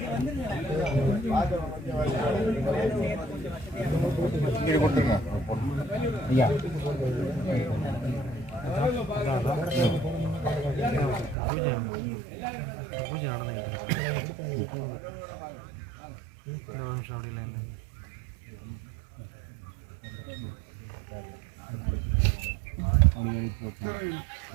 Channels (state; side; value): drops out; left; at 11.4 s